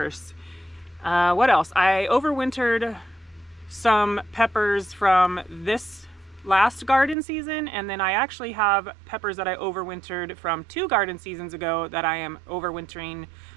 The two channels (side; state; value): left; drops out; at 7.2 s